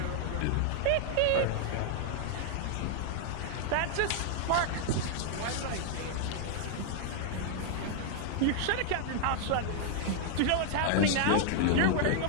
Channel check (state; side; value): different; both; correlation 0.00